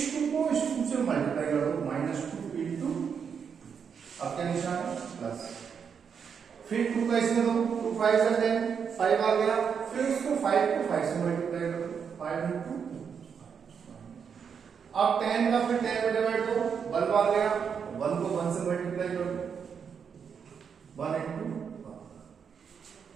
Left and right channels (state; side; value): quieter; left; 6.8 dB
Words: 2 को इस 2 से मल्टीप्लाई कर दो, -2 इंटू, अब क्या निशान है? प्लस। फिर 2 का इसमें दो, 2 5 से 10, 5 आ गया। फिर इसको 5 को 5 से मल्टीप्लाई कर दो, 5 इंटू। अब 10 का फिर 10 में डिवाइड दो, 1 बार गया, 1 को 1 से मल्टीप्लाई कर दो, 1 इंटू 1।